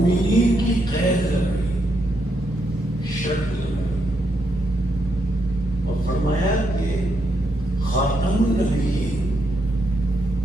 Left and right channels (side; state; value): both; normal; correlation 0.79